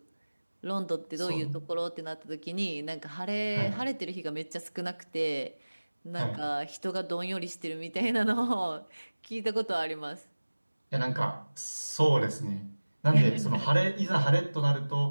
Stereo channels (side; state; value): both; inverted; correlation -1.00